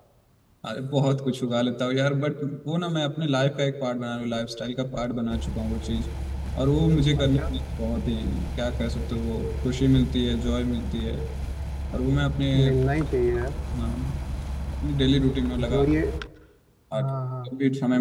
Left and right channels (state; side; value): identical; both; correlation 1.00